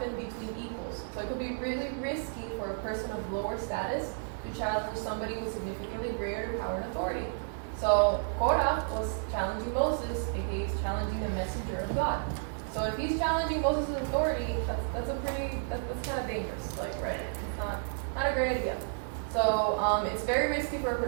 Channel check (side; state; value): left; silent; digital silence